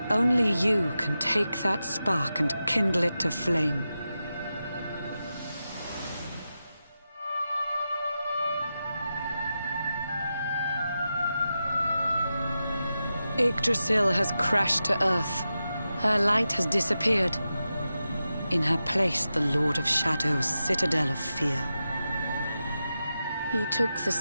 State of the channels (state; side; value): inverted; both; correlation -0.91